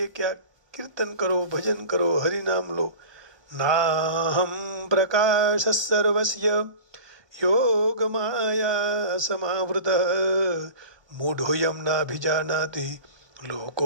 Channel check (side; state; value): left; late; 1.2 ms